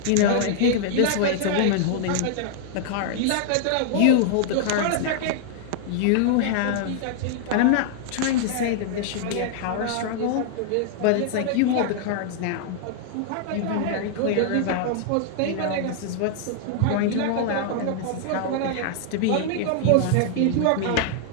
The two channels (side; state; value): both; different; correlation -0.01